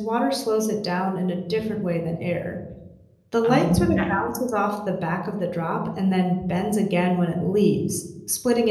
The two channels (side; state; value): both; identical; correlation 1.00